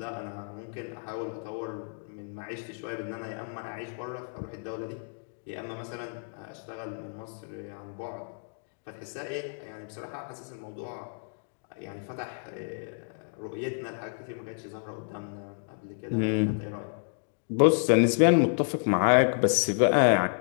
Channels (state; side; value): silent; right; digital silence